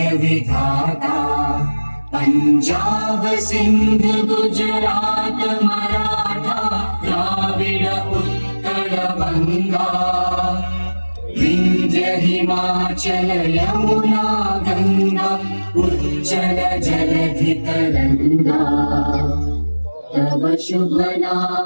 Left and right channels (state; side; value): inverted; both; correlation -1.00